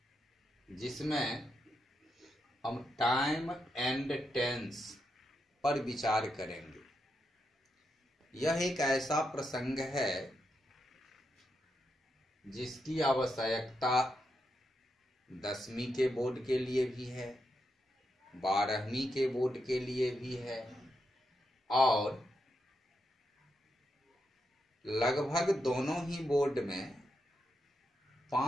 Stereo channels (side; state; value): both; normal; correlation 0.84